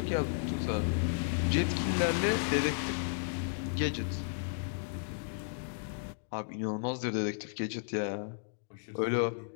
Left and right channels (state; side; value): silent; right; digital silence